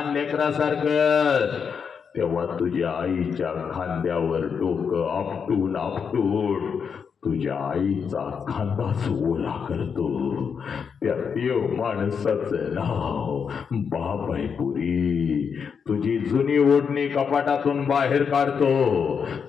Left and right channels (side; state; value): right; quieter; 6.5 dB